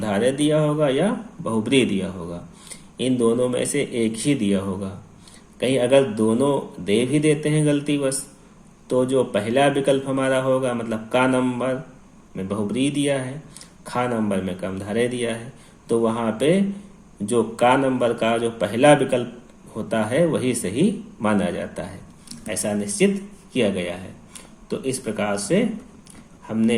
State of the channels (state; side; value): identical; both; correlation 1.00